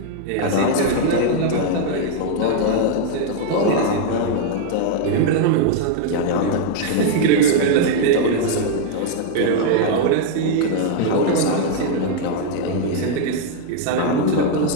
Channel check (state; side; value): different; both; correlation 0.00